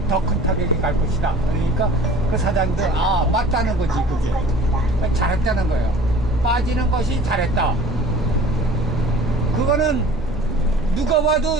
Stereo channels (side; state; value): both; normal; correlation 0.47